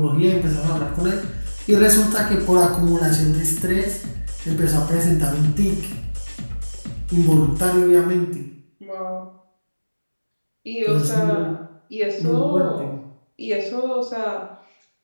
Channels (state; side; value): inverted; both; correlation -1.00